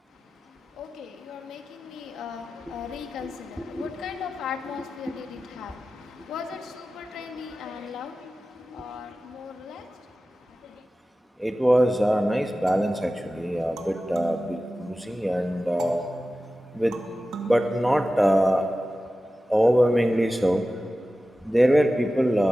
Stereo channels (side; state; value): both; normal; correlation 0.95